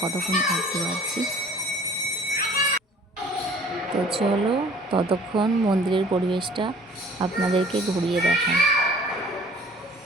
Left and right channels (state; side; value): normal; both; correlation 0.51